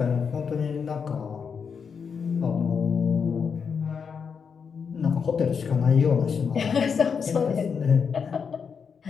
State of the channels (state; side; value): quieter; right; 6.2 dB